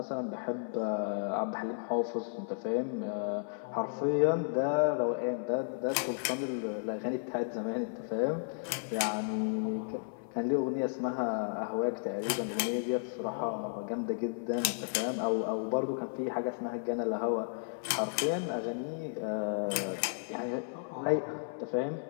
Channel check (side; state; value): right; silent; 55 dB below the other